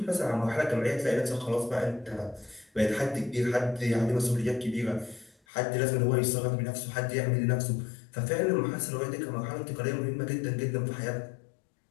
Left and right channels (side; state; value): right; drops out; at 5.4 s